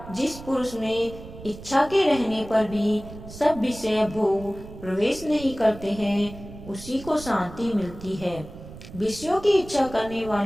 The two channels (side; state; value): right; noise; rumble, 15 dB below the sound